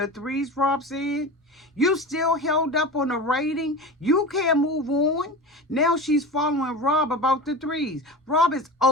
3s, Rob said? You still held up on the rating? You can't move on? Now she's following Rob about the 3s. Rob is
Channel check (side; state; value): both; normal; correlation 0.29